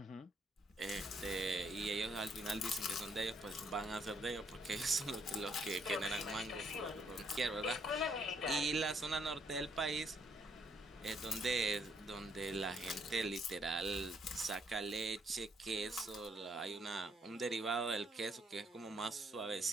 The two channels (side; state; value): both; normal; correlation 0.71